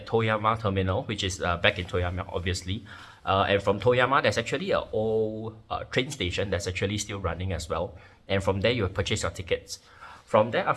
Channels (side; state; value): both; identical; correlation 1.00